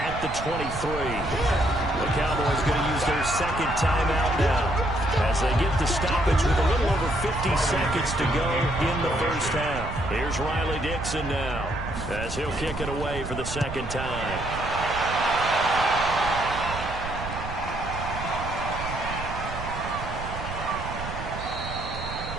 at the 23. The Cowboys going to use their 2nd timeout now as they get the stoppage with a little over 50 seconds to go in the first half. Here's Riley Dixon now as he'll kick it away for the 2nd time.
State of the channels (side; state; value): right; noise; rumble, 8 dB below the sound